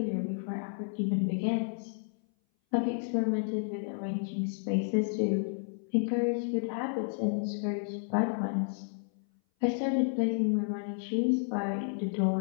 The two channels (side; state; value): right; silent; 57 dB below the other